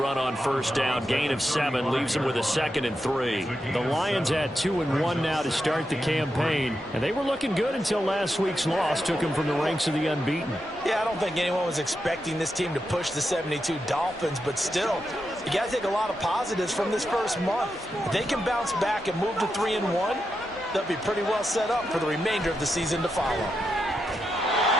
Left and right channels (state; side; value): normal; both; correlation 0.86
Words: on first down. Gain of 7 leaves him with a 2nd and 3. The Lions at 2-1 now to start the campaign. And they were looking good until last week's loss took them from the ranks of the unbeaten. Yeah, I don't think anyone was expecting this team to push the 72 Dolphins, but still, you got to take a lot of positives from this first month. If they can bounce back and move to 3-1, they'll be pretty well set up for the remainder of the season to follow.